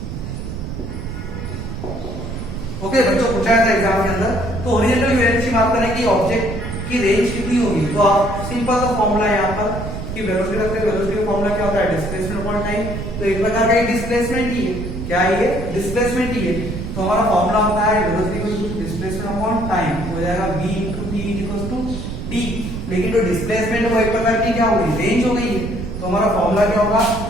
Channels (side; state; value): right; noise; rumble, 7 dB below the sound